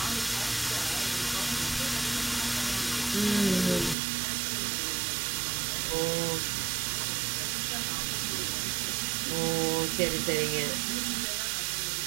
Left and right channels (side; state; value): left; drops out; at 4.0 s